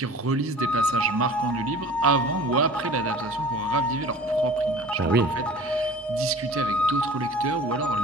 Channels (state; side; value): normal; both; correlation 0.43